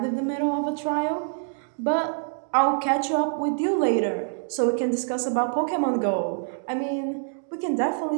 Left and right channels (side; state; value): left; silent; digital silence